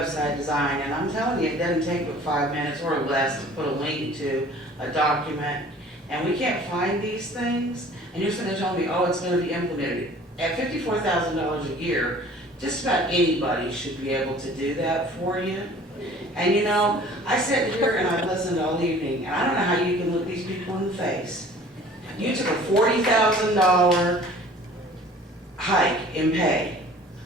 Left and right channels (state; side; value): normal; both; correlation 0.49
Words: design, and I'm telling you, it doesn't take but 5 minutes or less to put a link to a document. And we can't find these things, and you're going to tell me, oh, it's going to be implemented. At $54,000 a year, just about anybody should be able to do that for you. And you know, I sit here and I listen all evening, and I don't know how you can look these people in the face. You took a $40,000 hike in pay,